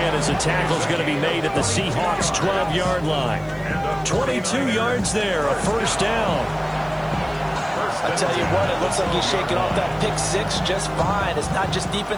as the tackle's going to be made at the Seahawks' 12-yard line. 22 yards there, a first down. I tell you what, it looks like he's shaking off that pick six just fine. It's not just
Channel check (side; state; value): left; noise; hiss, 29 dB below the sound